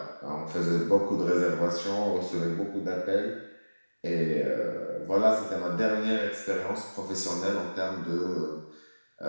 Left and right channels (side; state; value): both; inverted; correlation -1.00